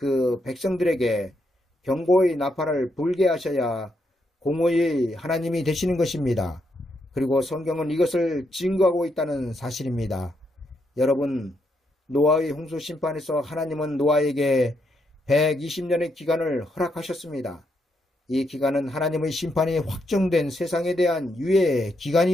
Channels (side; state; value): both; normal; correlation 0.79